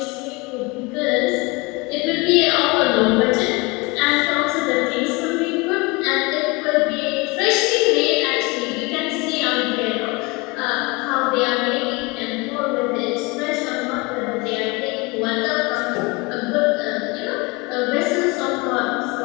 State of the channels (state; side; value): quieter; right; 26.1 dB